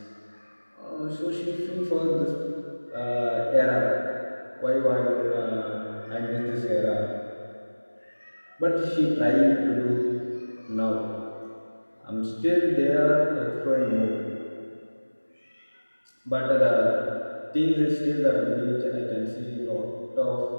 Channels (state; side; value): inverted; both; correlation -1.00